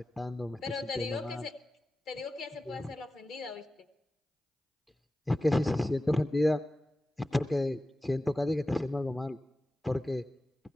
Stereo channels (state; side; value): normal; both; correlation 0.95